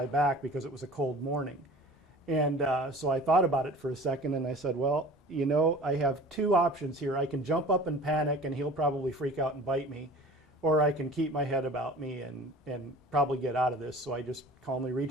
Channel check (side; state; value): both; normal; correlation 0.42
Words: back because it was a cold morning. And so I thought about it for a second, and I said, well, I have 2 options here. I can jump up and panic, and he'll probably freak out and bite me, or I can keep my head about me and probably get out of this. So I just calmly